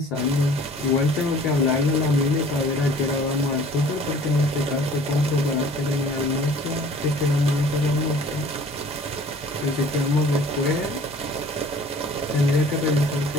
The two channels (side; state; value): both; normal; correlation 0.50